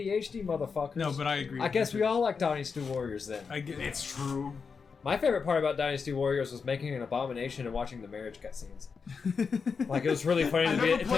motherfuckers. No, but I agree. I guess we all like Dynasty Warriors then. I get It's true. My favorite part about Dynasty Warriors was making an abomination and watching the marriage cutscenes. Like it was really funny I to never be,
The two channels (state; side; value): quieter; right; 5.5 dB